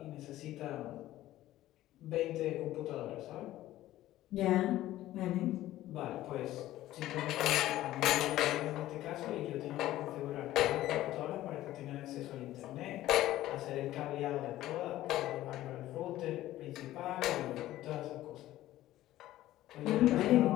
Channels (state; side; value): quieter; right; 14.8 dB